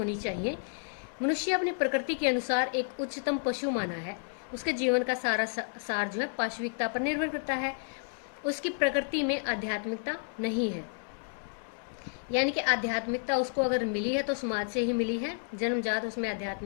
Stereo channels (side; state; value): right; silent; digital silence